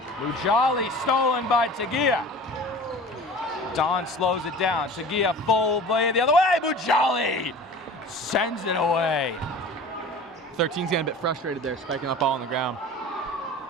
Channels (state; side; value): normal; both; correlation 0.39